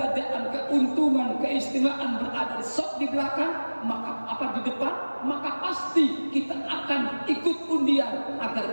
keuntungan, keistimewaan berada di shaf di belakang, maka apa di depan, maka pasti kita akan ikut undian agar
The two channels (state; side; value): inverted; both; correlation -1.00